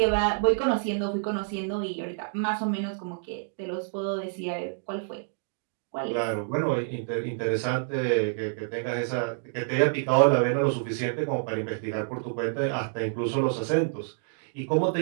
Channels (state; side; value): silent; left; digital silence